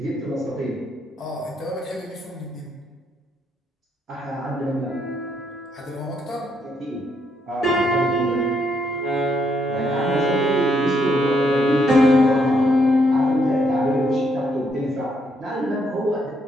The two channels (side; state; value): both; normal; correlation 0.74